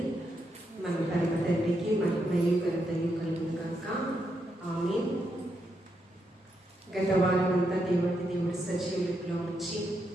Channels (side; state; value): both; normal; correlation 0.81